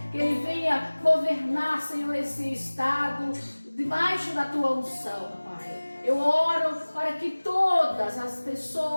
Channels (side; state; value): both; inverted; correlation -1.00